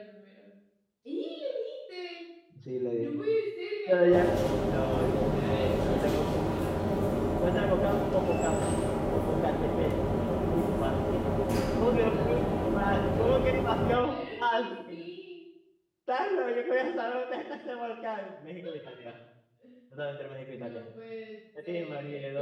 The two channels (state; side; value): identical; both; correlation 1.00